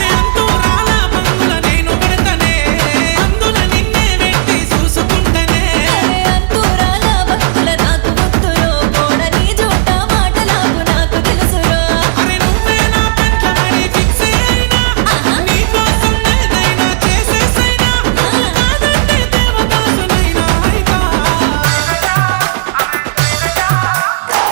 అంతూ రాలా బంగుల నేను గడతనే, అందుల నిన్నే వెట్టి చూసుకుంటనే. అరే అంతూరాల భక్తుల నాకు వద్దురో, పోడని జోట మాటలాపు నాకు తెలుసురో. అరే నువ్వే నా పెంట్లమని ఫిక్స్ అయినా, నీకోసం ఏదైనా చేసేసైనా. నువ్వు కాదంటే దేవదాసునైనా అయితా.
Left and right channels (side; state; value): left; silent; digital silence